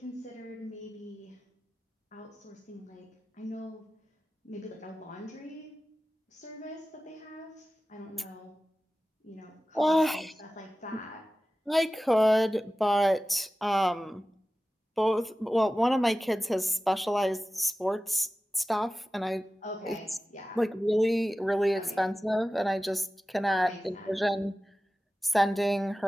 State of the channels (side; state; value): both; normal; correlation 0.95